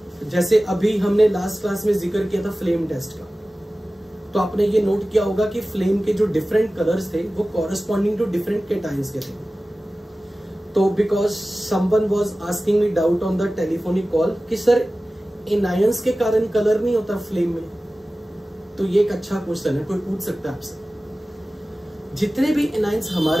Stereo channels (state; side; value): normal; both; correlation 0.96